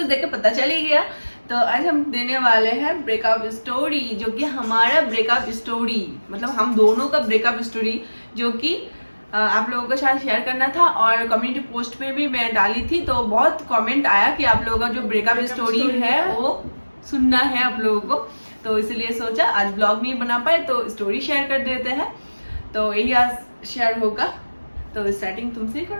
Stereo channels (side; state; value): both; inverted; correlation -1.00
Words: देख के पता चल ही गया। तो आज हम देने वाले हैं ब्रेकअप स्टोरी, जो कि हमारा ब्रेकअप स्टोरी, मतलब हम दोनों का ब्रेकअप स्टोरी, जो कि आप लोगों के साथ शेयर करना था। और कम्युनिटी पोस्ट पे भी मैं डाली थी, तो बहुत कमेंट आया कि आप लोगों का जो ब्रेकअप स्टोरी है वो सुनना है आप लोगों को। तो इसलिए सोचा आज ब्लॉग नहीं बना पाए तो स्टोरी शेयर कर देते हैं। तो यही आज शेयर होगा। तो स्टार्टिंग तुमसे ही